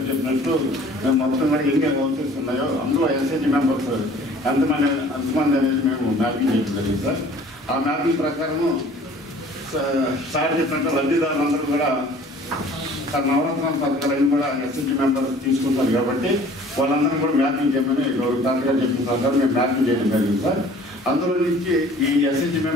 చెప్పినట్టు మేము మొత్తం కూడా ఎన్ని హౌసెస్ ఉన్నాయో అందులో ఎస్హెచ్ మెంబర్స్ ఎంతమంది అనేది మేము మ్యాపింగ్ చేయడం జరిగింది సార్. ఆ మ్యాపింగ్ ప్రకారము సార్ చెప్పినట్టు లబ్ధిదారులందరూ కూడా నవరత్నాల పథకాలన్నీ కూడా ఎస్హెచ్ మెంబర్ తీసుకుంటారు కాబట్టి వాళ్ళందరూ కూడా మ్యాపింగ్ చేయమని డాక్టర్ చెప్పిన ప్రకారం మేము మ్యాపింగ్ చేయడం జరిగింది సార్. అందులో నుంచి ఈ ఎస్హెచ్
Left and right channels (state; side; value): normal; both; correlation 0.50